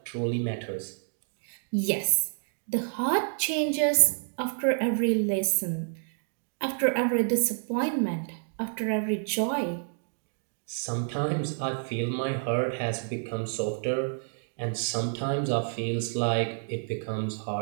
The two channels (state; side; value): silent; left; digital silence